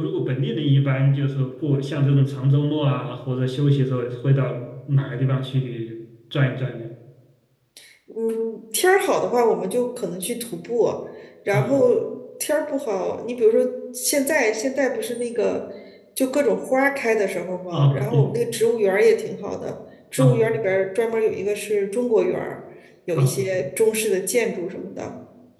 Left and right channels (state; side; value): identical; both; correlation 1.00